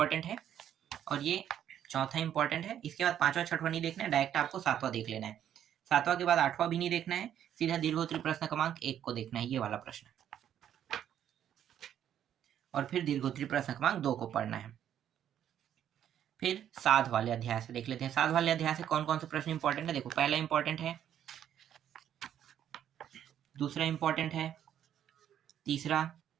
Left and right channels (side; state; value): left; quieter; 10.1 dB